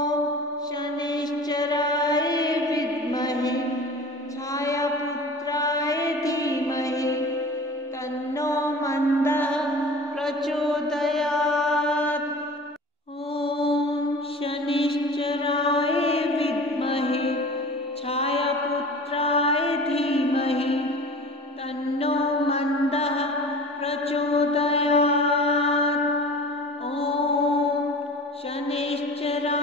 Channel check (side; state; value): both; normal; correlation 0.39